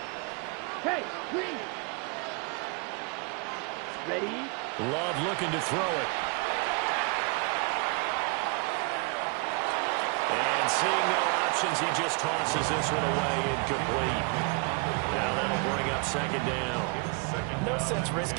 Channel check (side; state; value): left; quieter; 32.0 dB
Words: Hey, green. Ready. Love looking to throw it. And seeing no options, he just tosses this one away incomplete. Now that'll bring up 2nd down. No sense